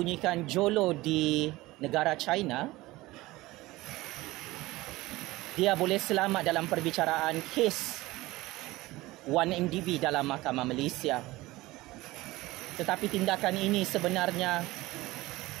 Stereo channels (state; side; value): quieter; left; 19.3 dB